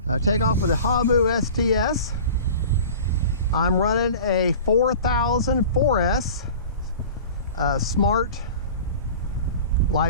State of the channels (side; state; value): both; inverted; correlation -0.39